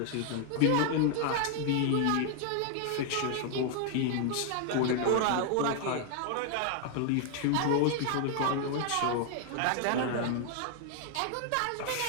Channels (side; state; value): both; different; correlation 0.00